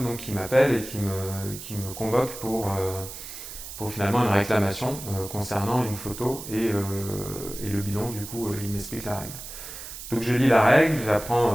donc, qui m'appelle et qui me convoque pour finalement une réclamation concernant une photo et le bidon. Du coup, il m'explique la règle. Donc je lis la règle, j'apprends,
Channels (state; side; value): noise; right; hiss, 11 dB below the sound